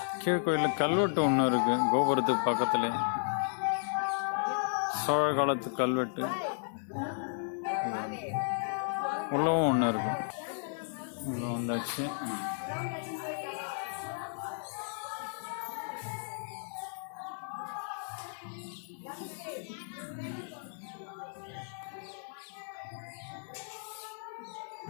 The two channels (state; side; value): silent; right; digital silence